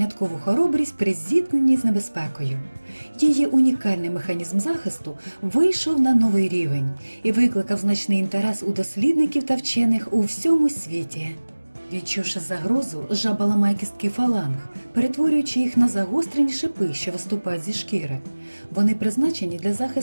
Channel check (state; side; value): inverted; both; correlation -1.00